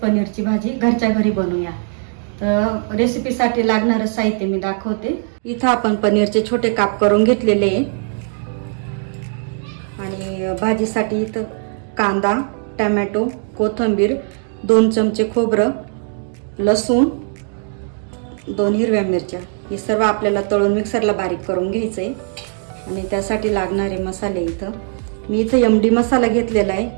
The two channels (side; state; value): left; silent; 58 dB below the other